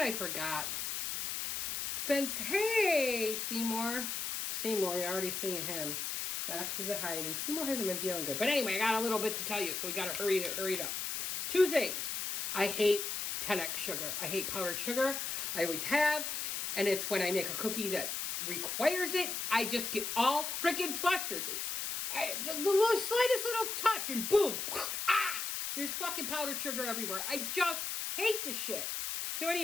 forgot? Hey, Seymour. Seymour, you already seen him. Knox is a hide, and Seymour hasn't been feeling good. But anyway, I got a little bit to tell you, so we gotta hurry it up. 2 things. I hate 10X sugar. I hate powdered sugar. I always have. And it's when I make a cookie that requires it, I just get all freaking flustered. There's the slightest little touch, and boom, there's fucking powdered sugar everywhere. I just hate this shit. So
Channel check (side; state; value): left; noise; hiss, 3 dB below the sound